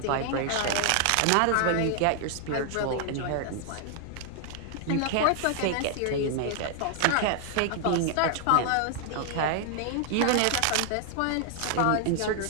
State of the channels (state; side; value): different; both; correlation 0.00